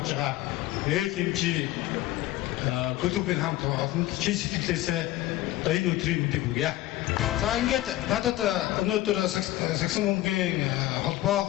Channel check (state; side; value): quieter; right; 15.6 dB